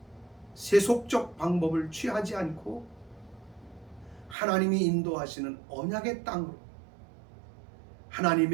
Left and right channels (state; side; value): drops out; left; at 4.4 s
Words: 세속적 방법을 취하지 않고 하나님이 인도하시는 언약의 땅으로,